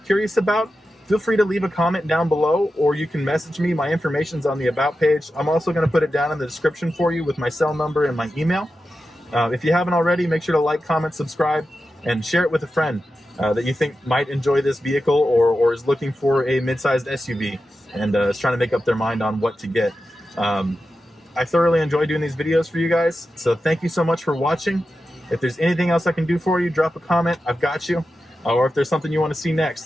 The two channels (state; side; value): normal; both; correlation 0.91